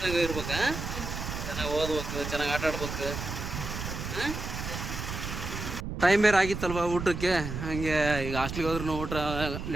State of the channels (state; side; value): noise; right; rumble, 6 dB below the sound